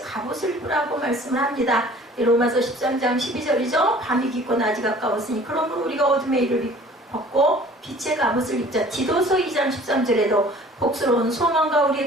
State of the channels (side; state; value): both; normal; correlation 0.50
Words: 갑옷을 입으라고 말씀을 합니다. 로마서 13장 12절이죠. 밤이 깊고 낮이 가까웠으니 그러므로 우리가 어둠의 일을 벗고 빛의 갑옷을 입자. 디도서 2장 13절에도 복스러운 소망과